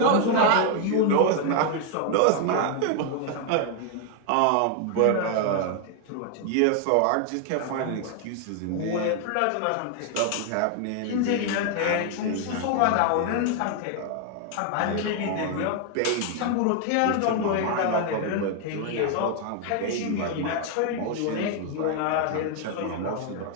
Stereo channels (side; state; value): both; different; correlation 0.00